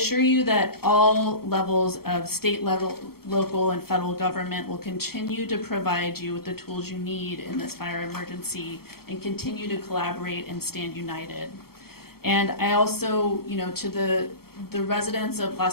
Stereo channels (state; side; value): late; right; 0.95 ms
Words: you that all levels of state level, local, and federal government will continue to provide you with the tools you need in this fire emergency and continue to collaborate and stand united. And I also, you know, to the residents of